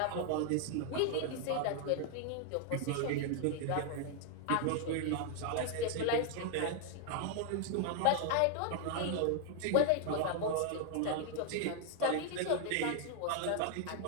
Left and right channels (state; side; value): different; both; correlation 0.00